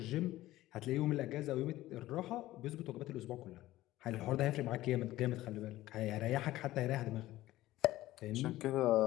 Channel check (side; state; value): right; quieter; 16.0 dB